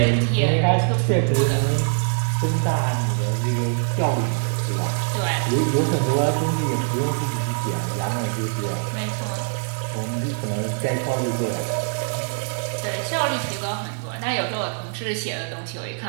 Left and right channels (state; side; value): silent; left; 63 dB below the other